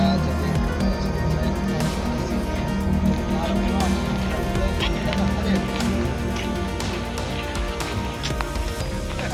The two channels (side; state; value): both; identical; correlation 1.00